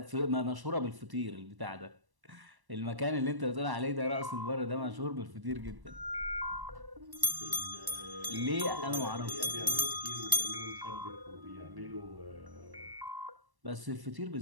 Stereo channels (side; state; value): left; late; 1.1 ms